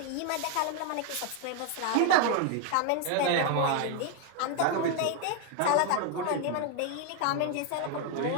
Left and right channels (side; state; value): both; different; correlation 0.00